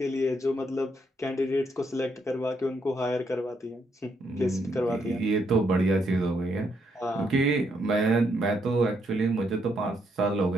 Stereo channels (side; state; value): both; normal; correlation 0.76